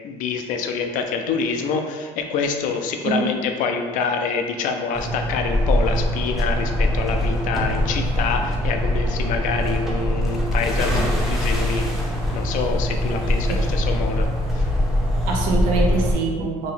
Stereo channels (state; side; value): normal; both; correlation 0.62